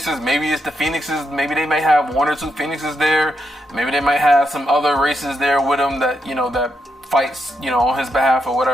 maybe it's the Phoenixes. Maybe they may have 1 or 2 Phoenixes there. Maybe they might have some other races there with him that, you know, that fights, you know, on his behalf or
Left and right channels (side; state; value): both; normal; correlation 0.82